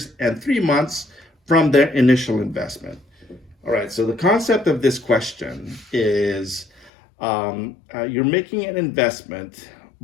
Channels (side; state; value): right; drops out; at 6.9 s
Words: and 3 months from their initial investment. All right, so the concept of this question is you're making an investment,